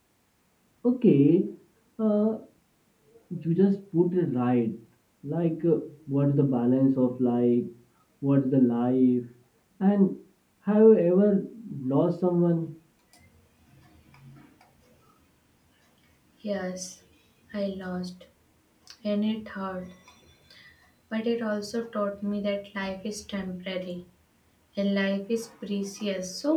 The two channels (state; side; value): identical; both; correlation 1.00